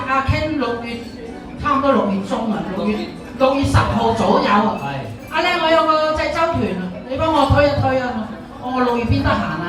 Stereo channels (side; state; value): both; identical; correlation 1.00